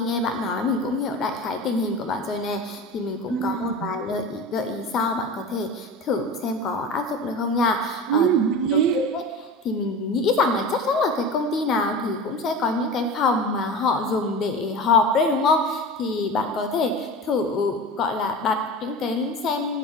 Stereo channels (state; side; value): normal; both; correlation 0.32